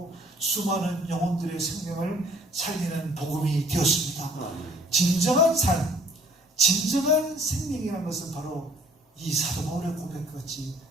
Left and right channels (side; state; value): both; normal; correlation 0.57